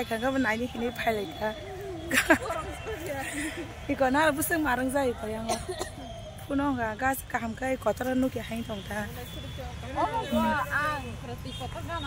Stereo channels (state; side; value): identical; both; correlation 1.00